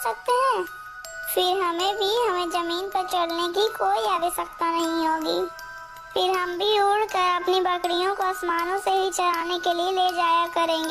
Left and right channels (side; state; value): both; identical; correlation 1.00